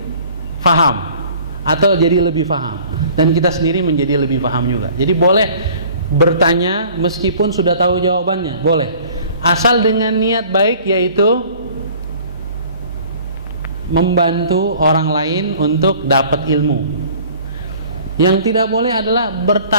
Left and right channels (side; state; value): both; inverted; correlation -0.50